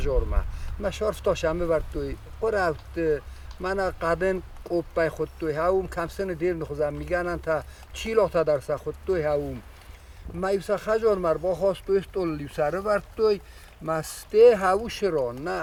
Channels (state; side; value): identical; both; correlation 1.00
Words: ما شارف تاشمه ورد توی قرفت من قدن قوب بای خود توی هاوم کم سن دیر نخوزم میگنن تا چیلا تا درس خود توی هاوم ما ایسا خجار مر با خواستوی استول لیوسره ورد توی مسته هاوش را نه